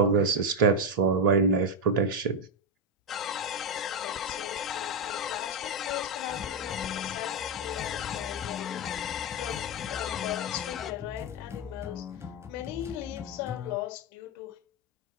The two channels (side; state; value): both; normal; correlation 0.06